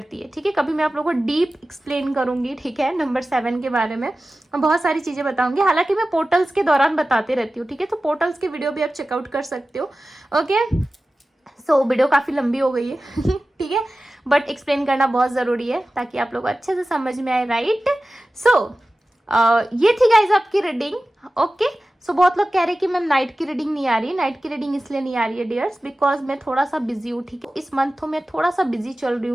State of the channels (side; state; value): both; normal; correlation 0.95